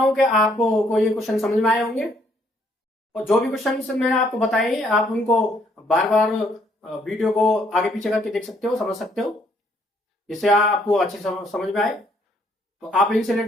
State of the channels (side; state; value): both; normal; correlation 0.68